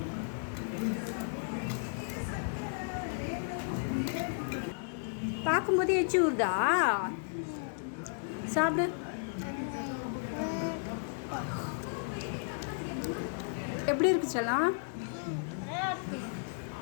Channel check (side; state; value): right; silent; digital silence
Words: பார்க்கும்போது எச்சி ஊறுதா? சாப்பிடு. எப்படி இருக்கு செல்லம்?